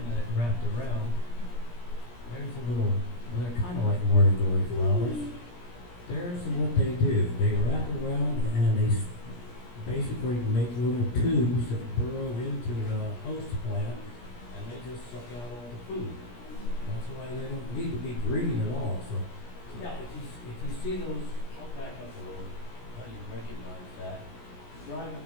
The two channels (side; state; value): right; late; 17 ms